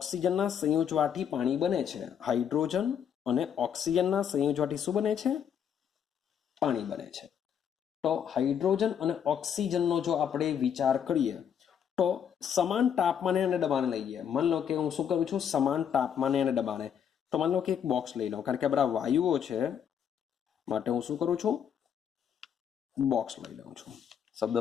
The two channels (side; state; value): right; quieter; 8.4 dB